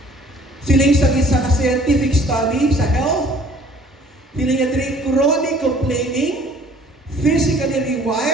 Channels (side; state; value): both; normal; correlation 0.55